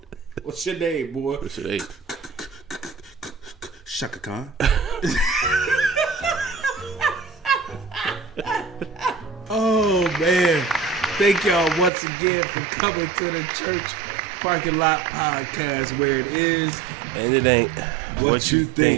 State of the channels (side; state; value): left; drops out; at 11.9 s